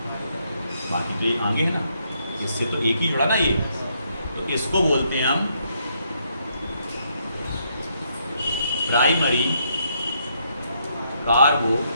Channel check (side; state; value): both; inverted; correlation -0.75